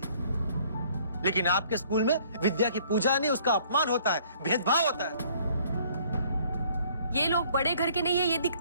लेकिन आपके स्कूल में विद्या की पूजा नहीं, उसका अपमान होता है, भेदभाव होता है। ये लोग बड़े घर के नहीं है, ये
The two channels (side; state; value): both; inverted; correlation -0.59